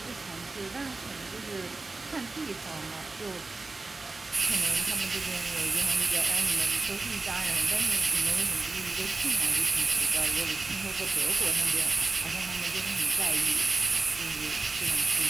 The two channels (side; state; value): left; quieter; 3.5 dB